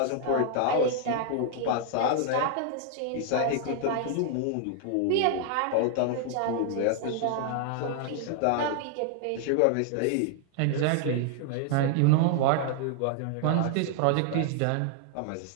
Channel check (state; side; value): different; both; correlation 0.00